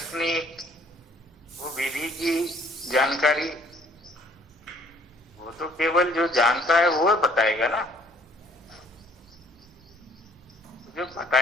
वो विधि की जानकारी वो तो केवल जो जानता है वो बताएगा ना, जो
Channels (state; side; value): normal; both; correlation 0.60